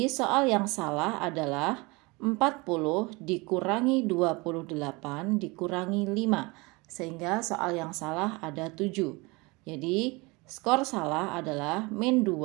soal yang salah adalah 40 dikurangi 28 dikurangi 5. Sehingga soal yang salah ada 7. Jadi skor salah adalah min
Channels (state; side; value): quieter; left; 25.6 dB